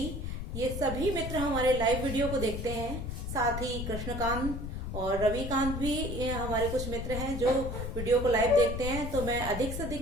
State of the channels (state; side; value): noise; left; rumble, 5 dB below the sound